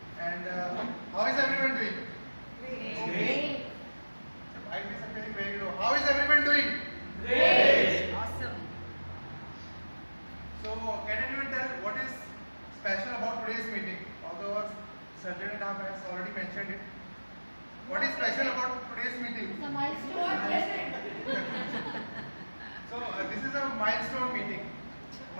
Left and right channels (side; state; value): both; inverted; correlation -1.00